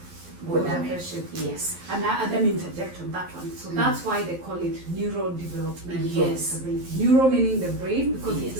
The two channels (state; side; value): late; left; 11 ms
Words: got damaged. Yes. And let me interject on that one. So that's why they call it neurodevelopmental disability. Neuro meaning the brain, because it's